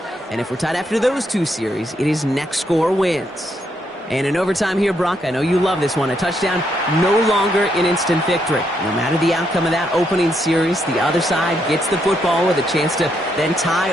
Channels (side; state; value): both; normal; correlation 0.77